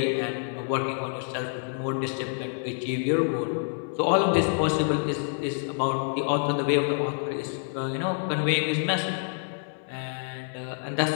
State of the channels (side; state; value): right; silent; digital silence